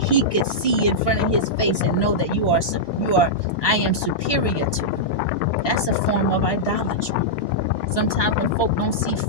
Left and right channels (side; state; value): right; late; 1.2 ms